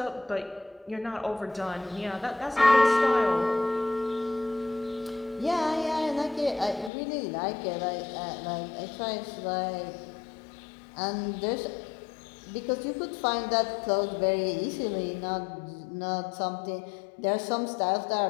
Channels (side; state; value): right; drops out; at 6.9 s